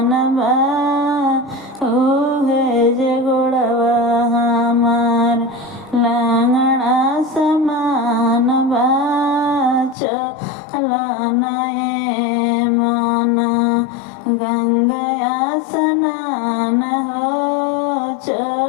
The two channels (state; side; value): drops out; right; at 10.0 s